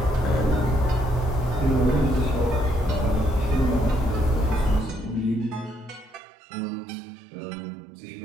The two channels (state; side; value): drops out; left; at 6.2 s